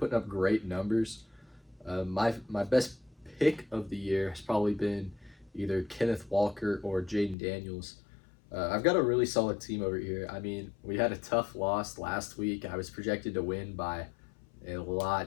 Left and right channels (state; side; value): drops out; right; at 7.4 s